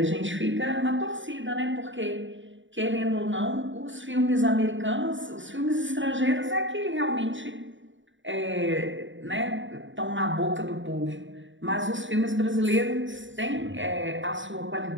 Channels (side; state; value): left; late; 0.55 ms